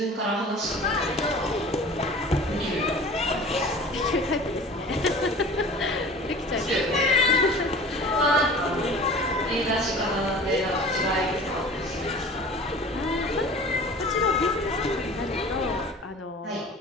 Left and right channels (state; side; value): normal; both; correlation 0.41